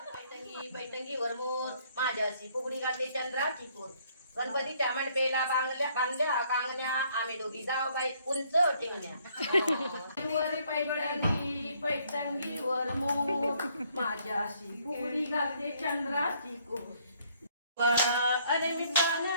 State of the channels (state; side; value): inverted; both; correlation -0.65